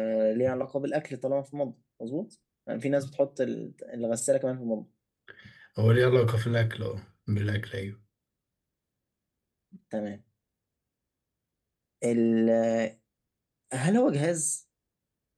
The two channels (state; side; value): identical; both; correlation 1.00